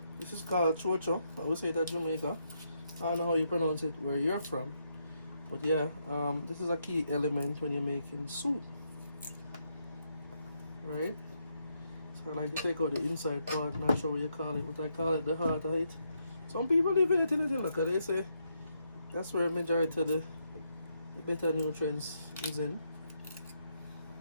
This is called chocho. I would say that Jamaica. I don't know how you pronounce it where you're from. But yeah, this is a key element when you're making soup. Right? So I like to take out the inside part, not sure what you call it, but I call it the heart of it. Some people leave it in it, look at they say that's where majority of the better nutrients is in.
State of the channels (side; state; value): both; inverted; correlation -0.79